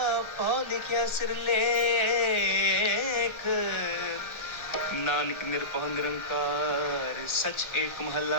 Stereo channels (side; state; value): right; late; 1.4 ms